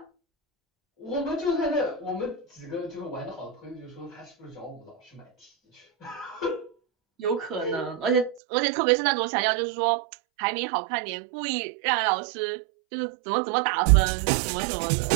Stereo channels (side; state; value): left; drops out; at 8.4 s